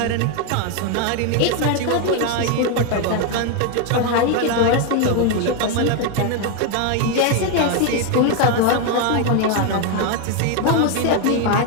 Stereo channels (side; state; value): both; different; correlation 0.01